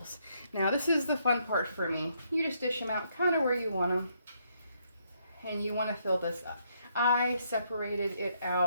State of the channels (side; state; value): both; inverted; correlation -0.73